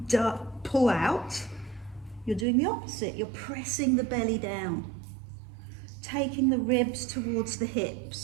pull out. You're doing the opposite. You're pressing the belly down. Taking the ribs towards the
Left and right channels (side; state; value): left; drops out; at 2.5 s